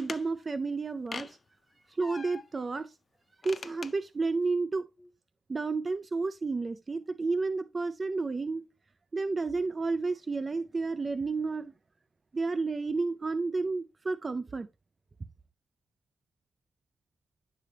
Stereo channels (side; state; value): left; quieter; 3.3 dB